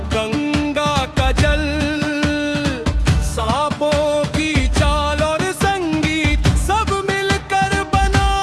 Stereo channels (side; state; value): both; identical; correlation 1.00